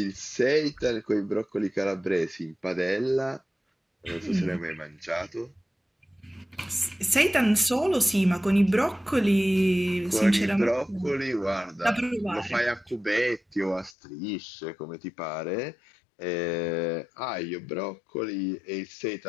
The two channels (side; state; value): right; drops out; at 14.0 s